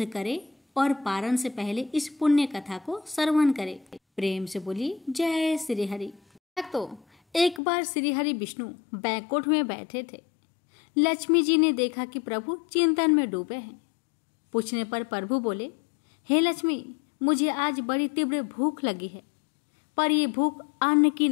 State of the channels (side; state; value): right; drops out; at 7.6 s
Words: करें और पारण से पहले इस पुण्य कथा को श्रवण करें। प्रेम से बोलिए जय श्री हरि। तो एक बार श्री हरि विष्णु बैकुंठ में बैठे थे। लक्ष्मी जी ने देखा कि प्रभु चिंतन में डूबे हैं। पूछने पर प्रभु बोले, हे लक्ष्मी, मुझे आज बड़ी तीव्र भूख लगी है, पर ये भूख अन्न की